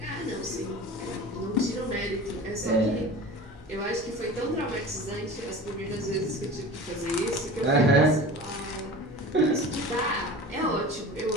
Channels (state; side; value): normal; both; correlation 0.36